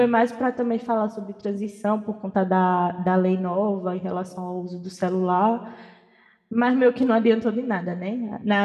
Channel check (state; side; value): identical; both; correlation 1.00